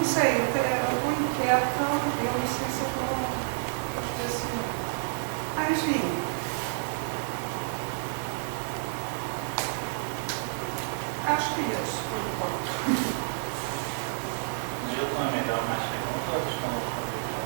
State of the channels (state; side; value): silent; left; 58 dB below the other